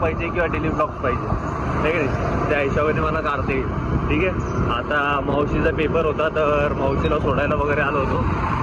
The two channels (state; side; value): identical; both; correlation 1.00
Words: पाहिजे किंवा डेली ब्लॉग्स पाहिजे नाही की नाही. त्या हिशोबाने मला काढता येईल. ठीक आहे. आता मावशीचा पेपर होता तर मावशीला सोडायला वगैरे आलो होतो.